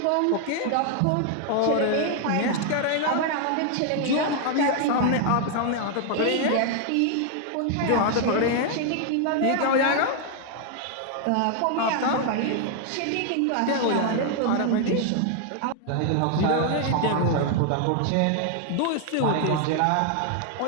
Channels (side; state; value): both; different; correlation 0.00